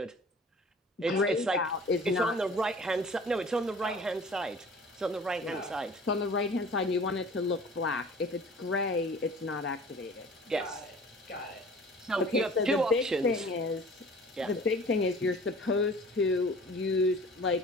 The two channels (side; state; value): both; normal; correlation 0.45